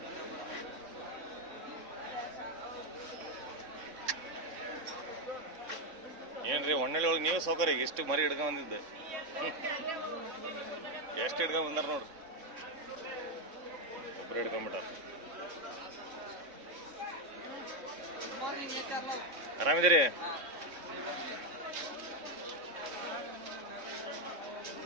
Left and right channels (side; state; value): left; late; 3.6 ms